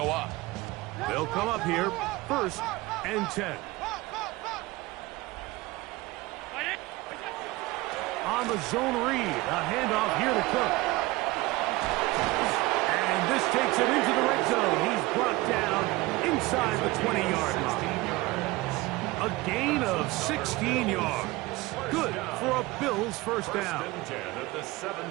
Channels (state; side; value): quieter; left; 20.7 dB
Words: up. They'll come up here, 1st and 10. On the zone read, a handoff here to Cook. And this takes him into the red zone. He's brought down inside the 20-yard line. A gain of 16 yards. Good for a Bills first down. First and 10 at the